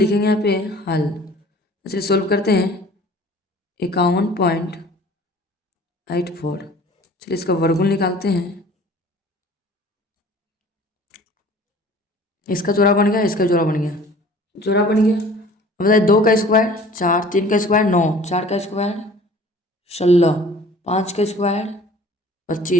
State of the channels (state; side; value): normal; both; correlation 0.48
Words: यहाँ पे हल। चलिए सोल्व करते हैं। 51.84, चलिए इसका वर्गमूल निकालते हैं। इसका जोड़ा बन गया, इसका जोड़ा बन गया, जोड़ा बन गया। अब बताइए 2 का स्क्वायर 4, 3 का स्क्वायर 9, 4 का स्क्वायर 16, 5 का स्क्वायर